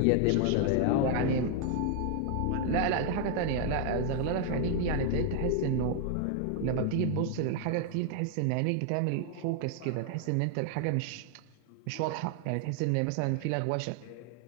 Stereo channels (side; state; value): both; different; correlation 0.00